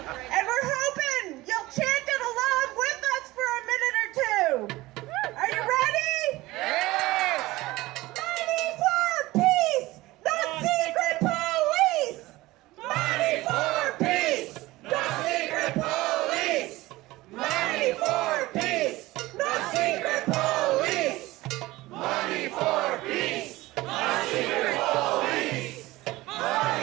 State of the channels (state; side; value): quieter; left; 19.0 dB